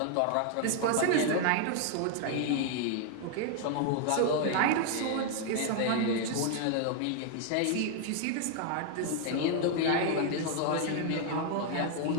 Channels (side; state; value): both; different; correlation 0.00